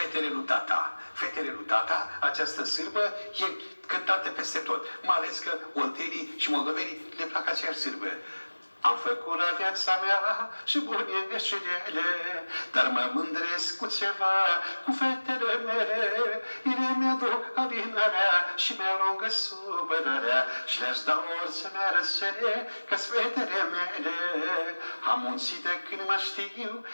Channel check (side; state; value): both; inverted; correlation -1.00